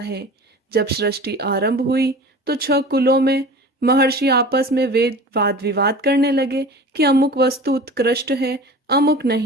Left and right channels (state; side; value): normal; both; correlation 0.38